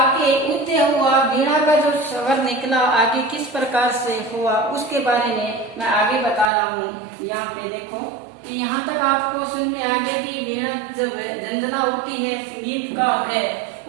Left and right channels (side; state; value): left; drops out; at 6.5 s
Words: उदय हुआ, वीणा का जो स्वर निकला आगे किस प्रकार से हुआ उसके बारे में मैं आगे बता रहा हूँ। यहाँ पे देखो कि यहाँ तक आपको समझ में आ गया कि वीणा जब झंझना होती है, संगीतकार है,